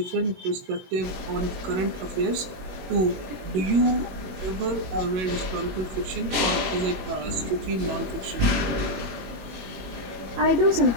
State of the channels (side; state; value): left; late; 21 ms